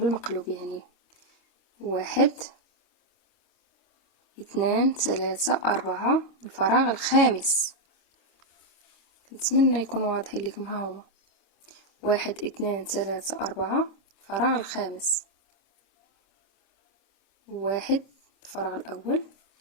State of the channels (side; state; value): right; late; 25 ms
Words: يعني 1 2 3 4 الفراغ الخامس. نتمنى يكون واضح لكم، ها هما 1 2 3 4 الفراغ الخامس، 1 الفراغ الاول